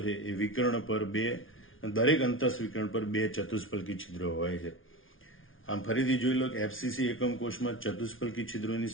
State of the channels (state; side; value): late; right; 0.58 ms